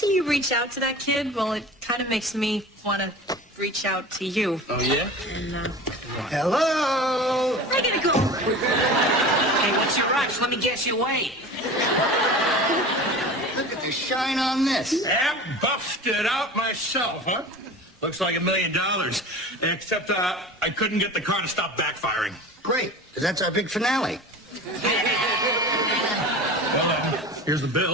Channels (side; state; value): both; normal; correlation 0.35